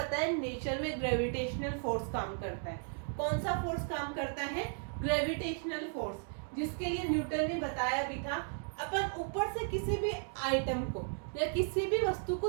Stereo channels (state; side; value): silent; left; 54 dB below the other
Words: है नेचर में ग्रेविटेशनल फोर्स काम करता है। कौन सा फोर्स काम करता है, ग्रेविटेशनल फोर्स, जिसके लिए न्यूटन ने बताया भी था। अपन ऊपर से किसी भी आइटम को या किसी भी वस्तु को